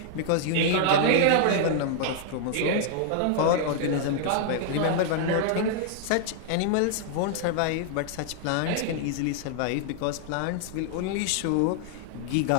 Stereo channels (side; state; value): both; different; correlation -0.01